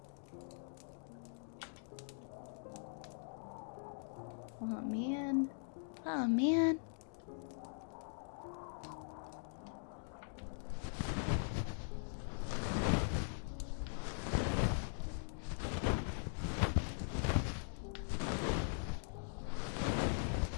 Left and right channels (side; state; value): right; silent; digital silence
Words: Oh man. Oh man.